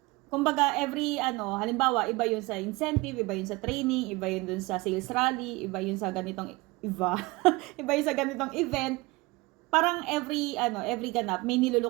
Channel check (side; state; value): left; quieter; 23.1 dB